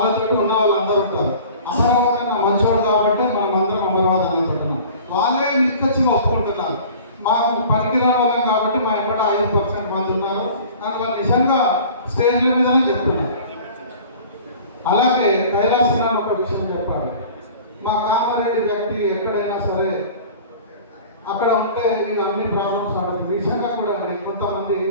ఉన్న వాళ్ళందరూ ఉంటారు. అమరావతి నా మంచోడు కాబట్టి మనం అందరం అమరావతి అనుకుంటున్నాం. వాళ్ళే నిక్కచ్చిగా ఒప్పుకుంటున్నారు. మాకు పనికిరాని వాళ్ళం కాబట్టి మా ఇక్కడ 5% మంది ఉన్నారు కానీ వాళ్ళు నిజంగా స్టేజ్ల మీదనే చెప్తున్నారు. అలాగే కైలాసనాన్ని ఒక విషయం చెప్పాలి. మా కామారెడ్డి వ్యక్తి ఎక్కడైనా సరే అక్కడ ఉంటే మీకు అన్ని ప్రాబ్లమ్స్ ఆడుతుంది. నిజంగా కూడా కొంతమంది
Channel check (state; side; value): inverted; both; correlation -0.44